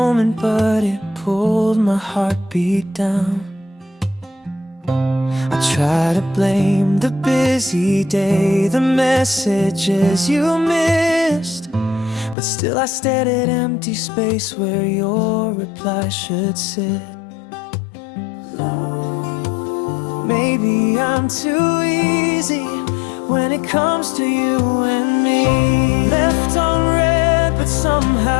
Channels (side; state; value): right; drops out; at 12.4 s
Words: but it pulled my heartbeat down. I try to blame the busy day, the messages you missed, but still I stared at empty space where your reply should sit. Maybe I'm too easy when it comes to you and me. Left on red, but